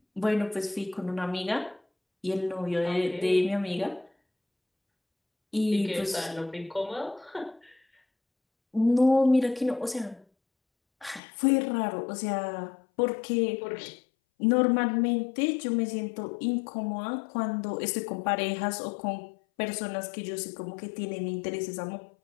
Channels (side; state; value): right; drops out; at 11.2 s